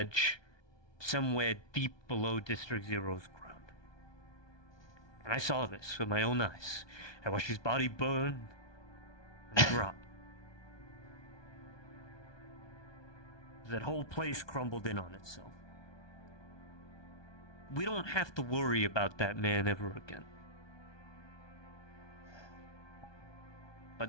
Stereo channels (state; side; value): late; right; 1.2 ms